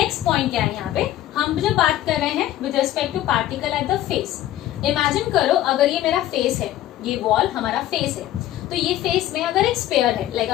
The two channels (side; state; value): right; quieter; 13.5 dB